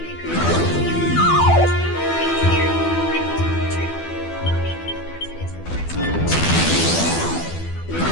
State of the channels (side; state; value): right; late; 12 ms